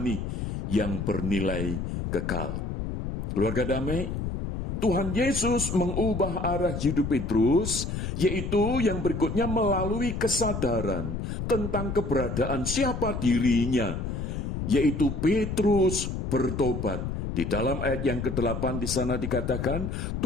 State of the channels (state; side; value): noise; left; rumble, 4 dB below the sound